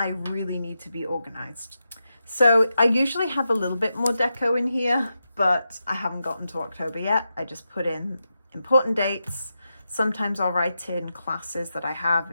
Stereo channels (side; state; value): both; inverted; correlation -0.88